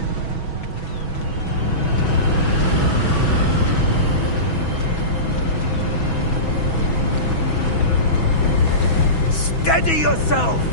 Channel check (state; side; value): late; right; 6.1 ms